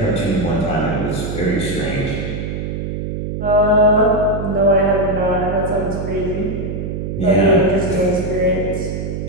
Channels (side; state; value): right; noise; hum, 4 dB below the sound